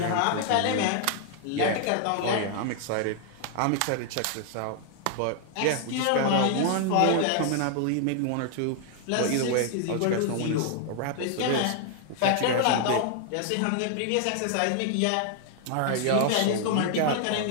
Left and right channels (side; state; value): both; different; correlation 0.00